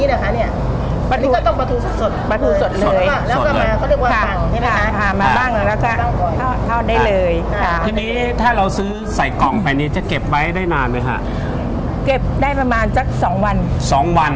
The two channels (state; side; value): identical; both; correlation 1.00